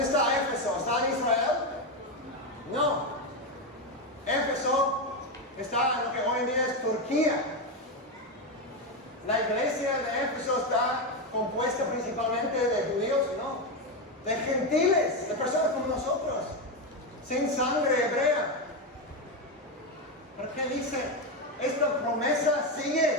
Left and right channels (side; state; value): both; normal; correlation 0.10